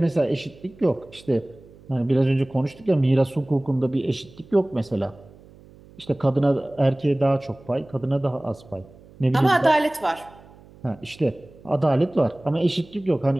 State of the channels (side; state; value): right; noise; hum, 24 dB below the sound